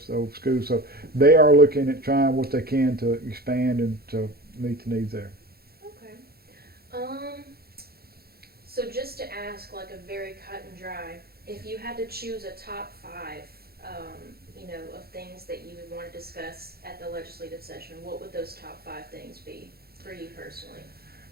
the old school. So they are looking at trying what they can to expand and to meet the needs there. Okay. So just to ask, like a very cut and dry, if you had to choose a top 5, of things that you would want to discuss at the legislative session, what would those top 5 things be for you personally?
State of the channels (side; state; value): left; late; 0.45 ms